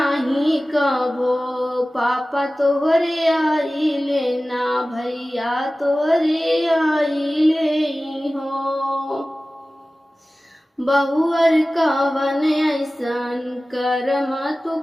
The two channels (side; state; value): both; normal; correlation 0.97